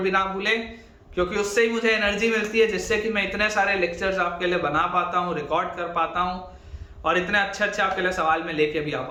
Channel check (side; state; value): both; identical; correlation 1.00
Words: ना भूलें, क्योंकि उससे ही मुझे एनर्जी मिलती है, जिससे कि मैं इतने सारे लेक्चर्स आपके लिए बना पाता हूँ, रिकॉर्ड कर पाता हूँ, और इतने अच्छे आपके लिए सवाल में लेके भी आ